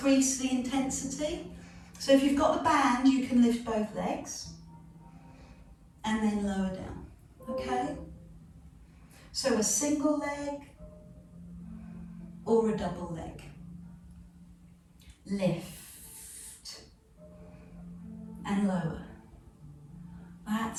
the intensity. So if you've got the band, you can lift both legs and then lower down, okay? So a single leg or a double leg. Lift and lower.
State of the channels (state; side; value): identical; both; correlation 1.00